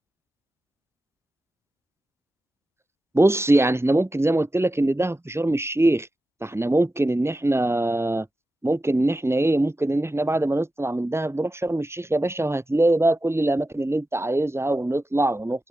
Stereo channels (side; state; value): both; normal; correlation 0.92